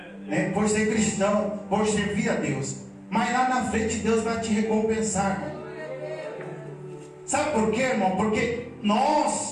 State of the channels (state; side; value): identical; both; correlation 1.00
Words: né? Por ser cristão, por servir a Deus. Mas lá na frente Deus vai te recompensar, irmão. Sabe por quê, irmão? Porque